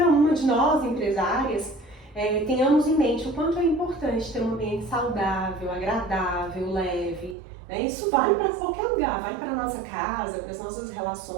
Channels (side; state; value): left; drops out; at 7.4 s